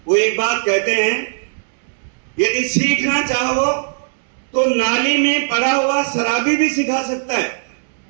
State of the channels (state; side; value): silent; left; digital silence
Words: वो एक बात कहते हैं, यदि सीखना चाहो तो नाली में पड़ा हुआ शराबी भी सिखा सकता है,